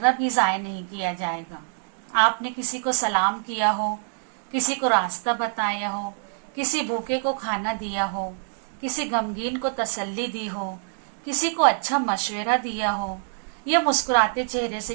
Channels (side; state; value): left; silent; digital silence